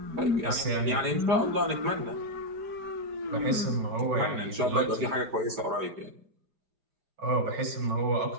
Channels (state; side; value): late; left; 5.0 ms